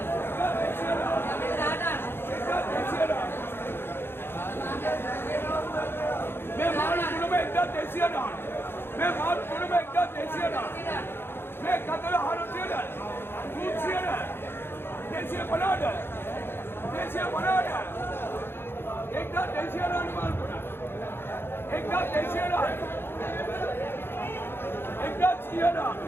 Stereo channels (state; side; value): late; right; 0.11 ms